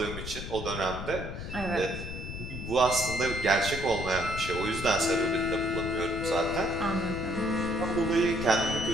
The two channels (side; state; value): left; noise; rumble, 7 dB below the sound